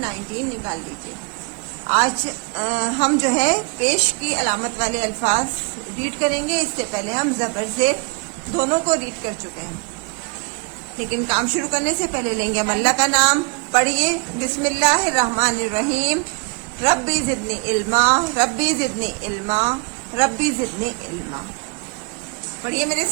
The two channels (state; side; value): quieter; left; 34.2 dB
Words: निकाल लीजिए। आज हम जो है पेश की अलामत वाले अल्फाज रीड करेंगे। इससे पहले हम ज़बर से दोनों को रीड कर चुके हैं, लेकिन काम शुरू करने से पहले लेंगे हम अल्लाह का नाम। पढ़िए, बिस्मिल्लाहिर्रहमानिर्रहीम। रब्बी ज़िदनी इल्मा, रब्बी ज़िदनी इल्मा, रब्बी ज़िदनी इल्मा। पढ़िए मेरे